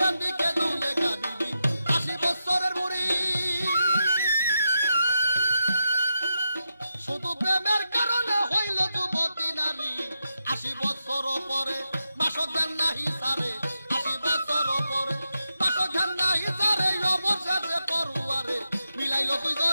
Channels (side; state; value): both; inverted; correlation -0.87